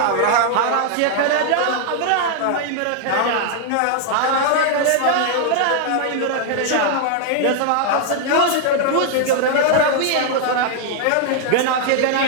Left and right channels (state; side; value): different; both; correlation 0.00